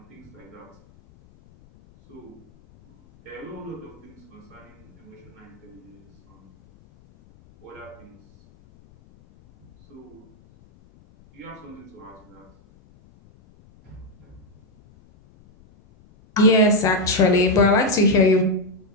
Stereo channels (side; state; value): left; noise; rumble, 28 dB below the sound